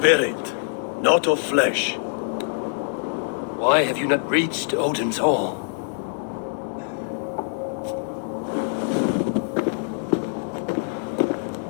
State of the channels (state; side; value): silent; right; 62 dB below the other